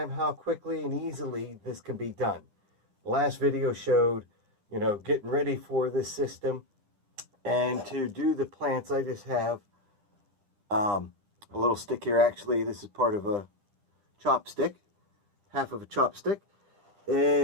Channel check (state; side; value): late; left; 9.9 ms